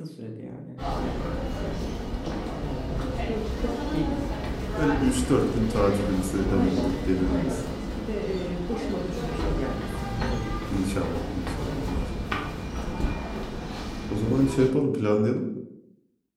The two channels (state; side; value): identical; both; correlation 1.00